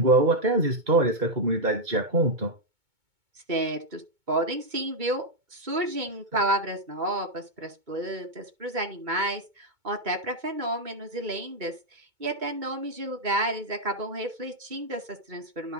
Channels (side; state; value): left; late; 2.2 ms